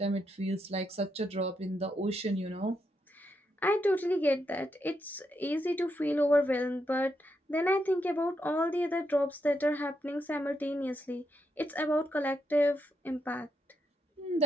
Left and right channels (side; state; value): both; normal; correlation 0.82